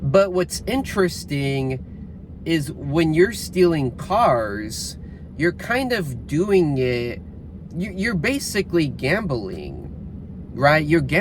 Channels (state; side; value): identical; both; correlation 1.00